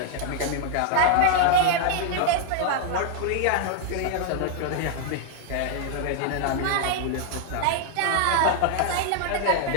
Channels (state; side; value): different; both; correlation 0.00